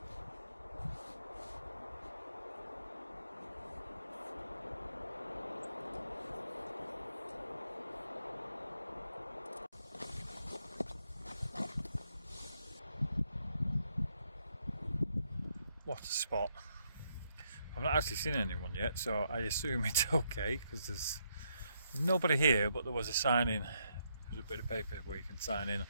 What a spot. I've not actually seen anyone yet, so I assume it's okay because there's nobody here, but there was a sign in. There's a bit of paper where you can sign in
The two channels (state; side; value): inverted; both; correlation -0.76